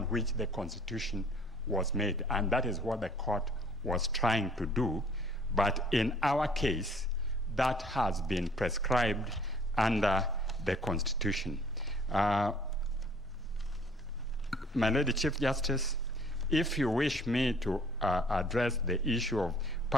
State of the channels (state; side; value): normal; both; correlation 0.56